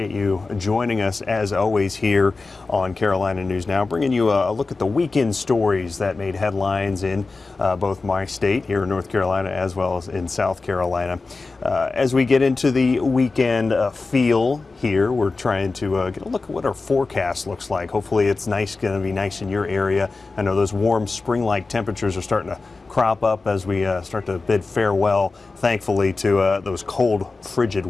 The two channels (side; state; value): right; quieter; 3.8 dB